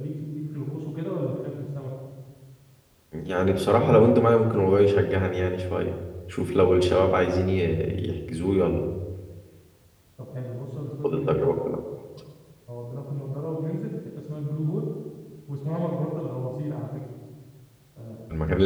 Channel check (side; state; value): both; identical; correlation 1.00